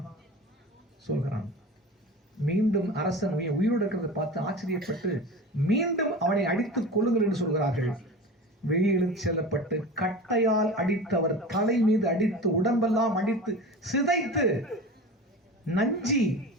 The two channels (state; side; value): normal; both; correlation 0.33